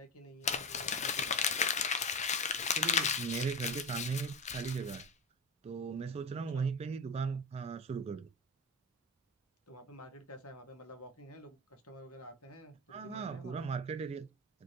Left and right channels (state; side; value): normal; both; correlation 0.22